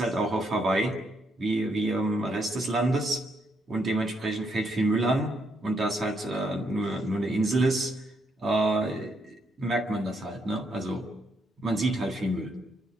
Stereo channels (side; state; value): both; normal; correlation 0.76